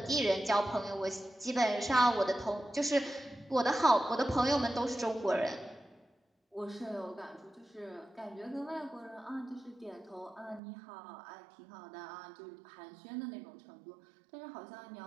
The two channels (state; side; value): drops out; left; at 10.6 s